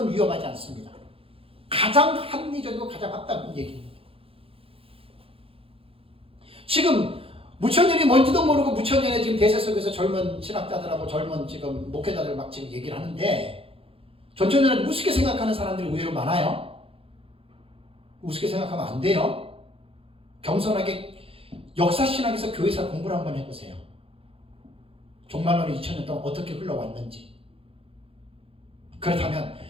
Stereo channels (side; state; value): left; late; 0.27 ms